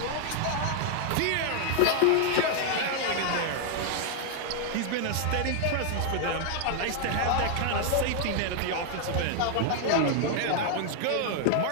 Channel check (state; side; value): different; both; correlation 0.00